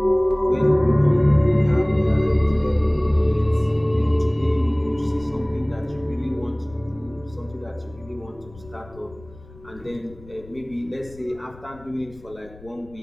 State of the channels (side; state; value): left; noise; rumble, 22 dB below the sound